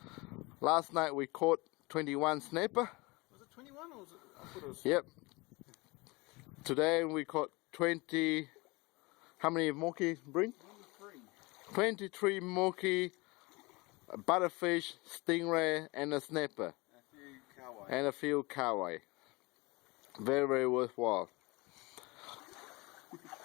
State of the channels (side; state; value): right; quieter; 24.5 dB